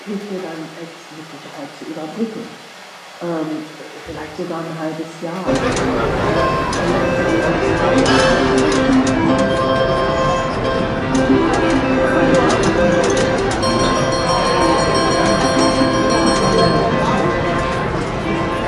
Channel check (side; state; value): both; identical; correlation 1.00